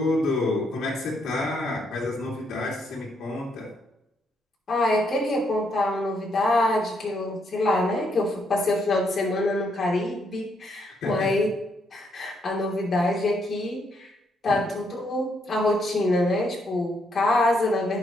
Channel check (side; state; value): both; normal; correlation 0.75